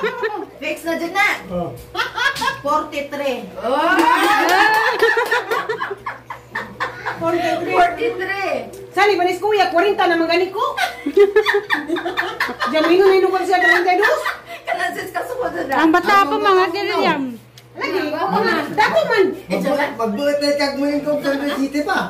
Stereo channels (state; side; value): identical; both; correlation 1.00